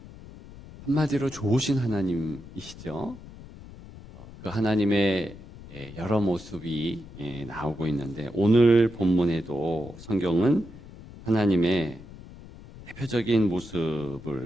한마디로 좋으신 하나님이시죠? 그 하나님의 여러 모습이 나오고 있는데 오늘 본문에도 성경은 하나님의 대표적인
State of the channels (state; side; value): noise; left; rumble, 17 dB below the sound